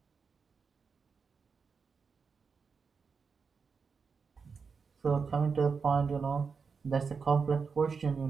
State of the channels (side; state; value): left; quieter; 5.4 dB